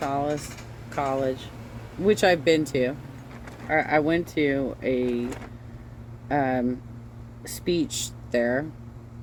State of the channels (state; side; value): identical; both; correlation 1.00